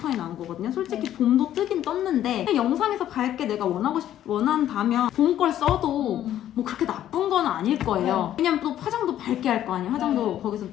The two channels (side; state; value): right; quieter; 11.7 dB